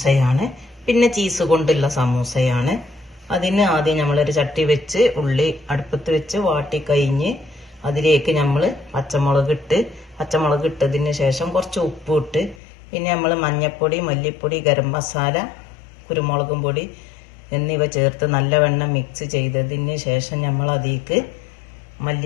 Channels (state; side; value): drops out; right; at 12.6 s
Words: പിന്നെ ചീസ് കൊണ്ടുള്ള സമൂസയാണ്. അതിന് ആദ്യം നമ്മളൊരു ചട്ടി വെച്ച് ഉള്ളി അടുപ്പത്ത് വെച്ച് വാട്ടി കഴിഞ്ഞ് അതിലേക്ക് നമ്മൾ പച്ചമുളക് ഇട്ടതിന് ശേഷം കുറച്ച് ഉപ്പ് ഇട്ട്, പിന്നെ നമ്മൾ മഞ്ഞൾപ്പൊടി, മല്ലിപ്പൊടി, ഗരം മസാല, കുരുമുളകും പൊടി എന്നിവ ചേർത്ത് നല്ലവണ്ണം മിക്സ് ചെയ്തതിന് ശേഷം നമ്മൾ അതിലേക്ക്